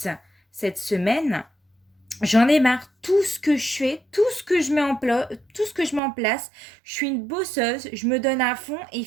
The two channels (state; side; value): drops out; left; at 6.0 s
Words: cette semaine, j'en ai marre, tout ce que je fais, tout ce que je mets en place, je suis une bosseuse, je me donne à fond et